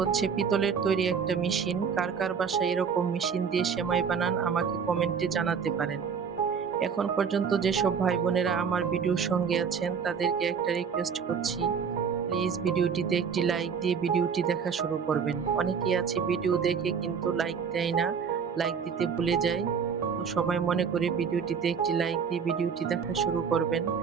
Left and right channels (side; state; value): left; quieter; 6.4 dB